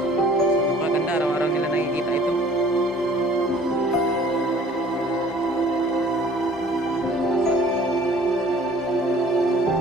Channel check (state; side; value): normal; both; correlation 0.53